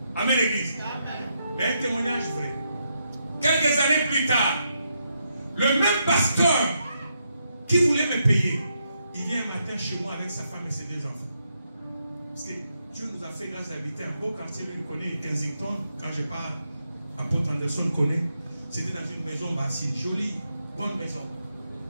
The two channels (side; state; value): both; inverted; correlation -0.81